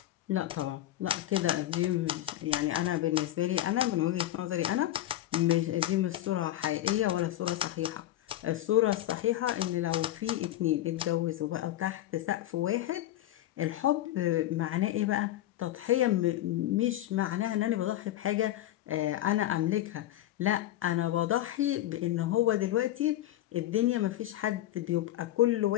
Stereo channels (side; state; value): right; quieter; 13.9 dB